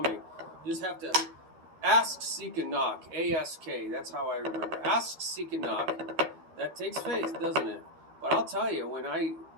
You just have to ask, seek, and knock. A-S-K, that's how I remember. Ask, seek, and knock. That takes faith, doesn't it? But I'll tell you, when I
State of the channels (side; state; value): left; late; 12 ms